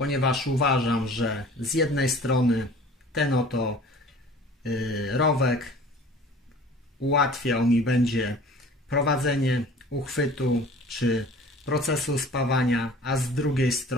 uważam, że z jednej strony ten oto rowek ułatwiał mi będzie prowadzenie uchwytu czy procesu spawania, a z drugiej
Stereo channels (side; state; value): both; normal; correlation 0.46